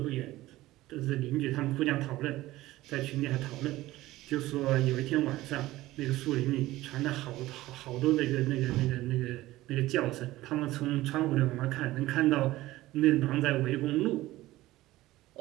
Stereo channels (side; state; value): left; quieter; 17.1 dB